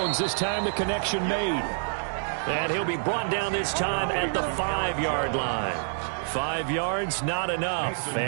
This time the connection made. And he'll be brought down this time at the 5-yard line. 5 yards, not enough.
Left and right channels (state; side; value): silent; left; digital silence